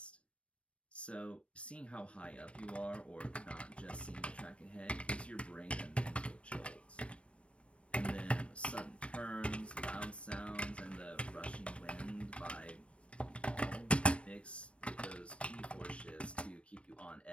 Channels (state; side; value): late; right; 0.061 ms